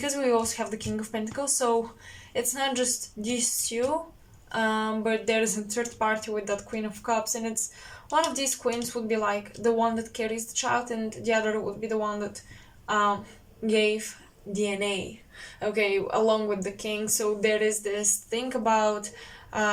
we also have the King of Pentacles, so it's not just these two, but there is a third party with that Queen of Cups, and it's one of these queens would be like the one that carries the child, and the other would be the one that gave DNA, okay, along with the king. So there is this thing about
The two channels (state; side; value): identical; both; correlation 1.00